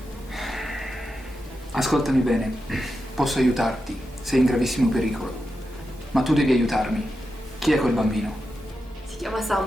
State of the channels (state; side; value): normal; both; correlation 0.88